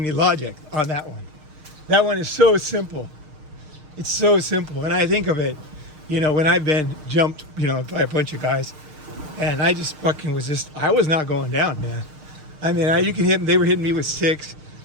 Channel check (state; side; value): late; left; 6.5 ms